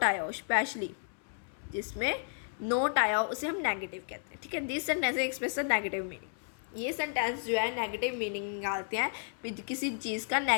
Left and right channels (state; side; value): silent; right; 56 dB below the other